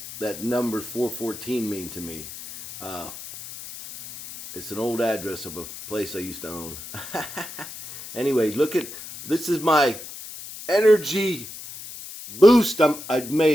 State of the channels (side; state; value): left; noise; hiss, 12 dB below the sound